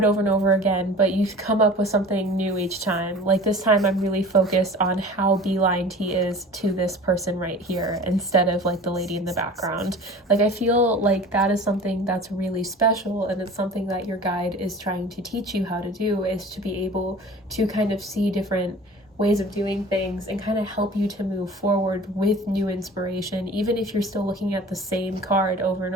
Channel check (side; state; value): both; normal; correlation 0.41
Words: over and over again, but you come up with something new each time. Like this time I'm really focused on how beelined he is to this person right here instead of like the lady in the background. Like I feel like that is something that's really special, and it's something that your guide is trying to teach you how to do, is to be able to kind of see different ways of doing things and kind of help you to move forward with new inspiration. Even if you're still looking at the same card over and